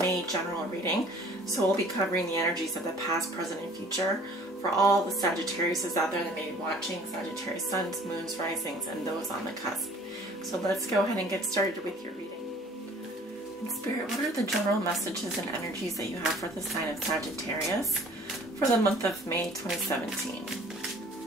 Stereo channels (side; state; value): both; normal; correlation 0.52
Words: general reading, so we'll be covering the energies of the past, present, and future for all the Sagittariuses out there that may be watching, Sagittarius suns, moons, risings, and those on the cusp. So let's go ahead and get started with your reading. In Spirit, what are the general messages and energies that you have for the sign of Sagittarius for the month of May 2017?